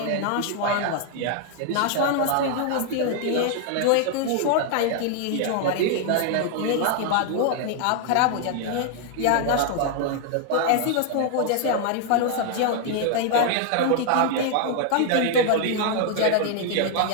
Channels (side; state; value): both; different; correlation 0.00